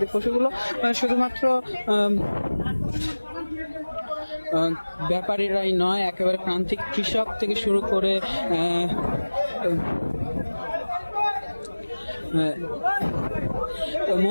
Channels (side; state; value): both; inverted; correlation -1.00